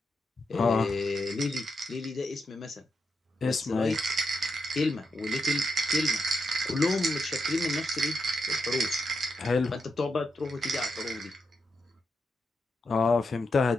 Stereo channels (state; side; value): normal; both; correlation 0.84